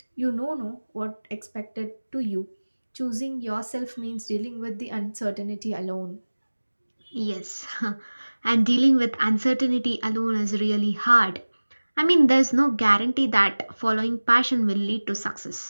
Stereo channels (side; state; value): both; inverted; correlation -1.00